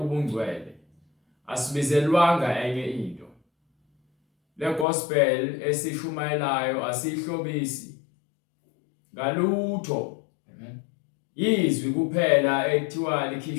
asibizelwanga enye into. Le gospel esishumayelayo asihlobisi ngalutho. Izwi kuphela ekuthiwa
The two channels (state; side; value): drops out; right; at 4.9 s